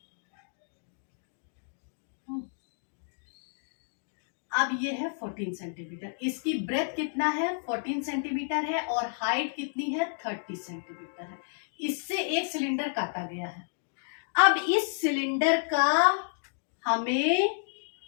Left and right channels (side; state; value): right; silent; digital silence